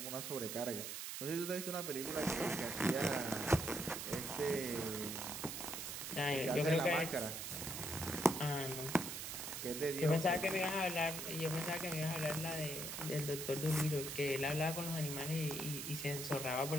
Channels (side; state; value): right; noise; hiss, 5 dB below the sound